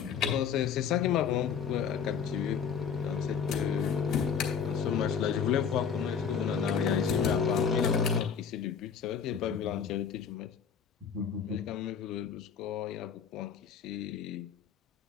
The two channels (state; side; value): quieter; right; 7.0 dB